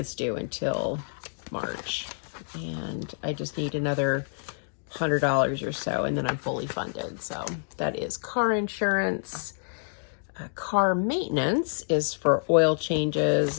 due until March. And I just need another $100 or so, and then I'm fully funded. So that is car insurance. Car maintenance is for oil changes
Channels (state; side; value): silent; right; digital silence